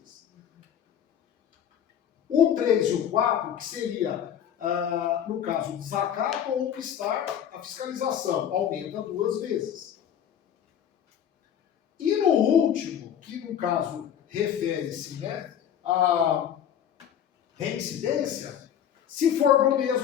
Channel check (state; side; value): quieter; right; 9.3 dB